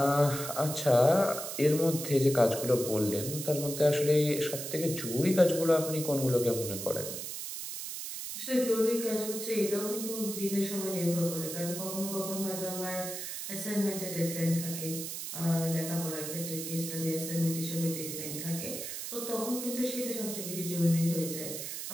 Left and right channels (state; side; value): noise; right; hiss, 6 dB below the sound